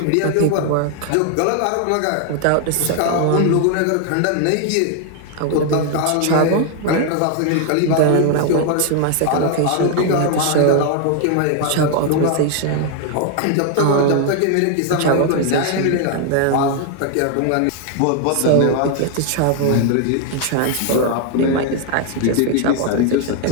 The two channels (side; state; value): both; different; correlation 0.00